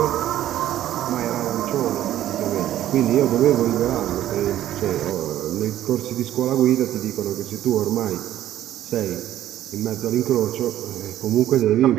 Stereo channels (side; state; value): left; quieter; 12.6 dB